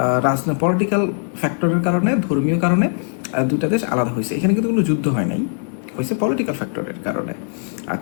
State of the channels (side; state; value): right; silent; 66 dB below the other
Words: রাজনৈতিক পলিটিক্যাল ফ্যাক্টরের কারণে, ধর্মীয় কারণে দুটা দেশ আলাদা হয়েছে। এখানে কিন্তু কোনো যুদ্ধ হয় নাই, হয়েছে পলিটিক্যাল ফ্যাক্টরের কারণে।